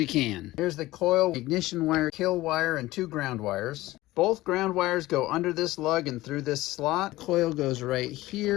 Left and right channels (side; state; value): right; quieter; 17.7 dB